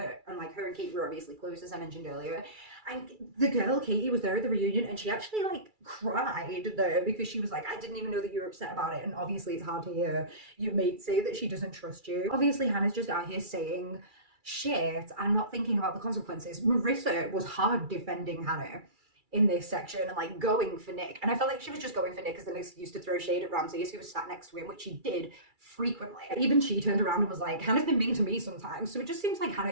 And like, her and Katie were obviously close, as I mentioned earlier. And the girl, Katie, was there at the reunion and she actually like cried there because she was like, I didn't even know that you were upset about it. And obviously it's hard to hear your mate say that she doesn't trust you. Obviously Hannah's just out here saying shit and not thinking about the consequences. Marissa was hard defending Hannah in this section and like going for Nick, and I felt like she was just going for Nick as an excuse to throw shade at Ramses, who was sat next to him, which she did frequently. Even she turned around and was like, Hannah's been mean to me sometimes. So it just seems like Hannah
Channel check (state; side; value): late; left; 2.3 ms